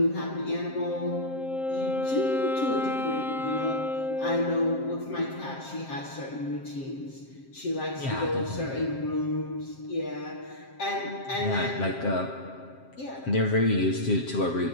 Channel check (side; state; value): right; late; 7.5 ms